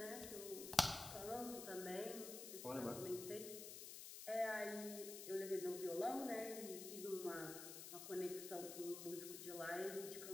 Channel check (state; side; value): noise; left; hiss, 8 dB below the sound